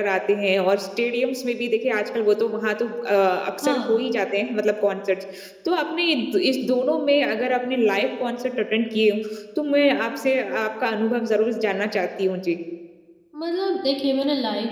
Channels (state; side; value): identical; both; correlation 1.00